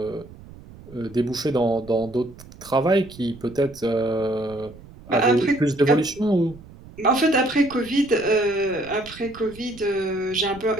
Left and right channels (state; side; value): noise; right; rumble, 19 dB below the sound